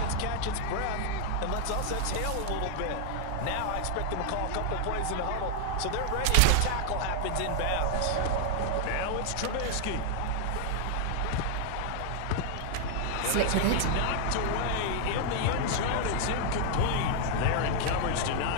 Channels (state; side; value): different; both; correlation 0.00